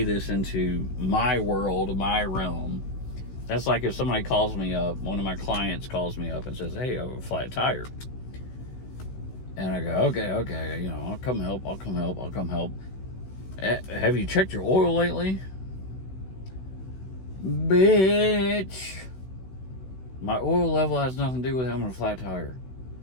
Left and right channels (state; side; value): late; right; 16 ms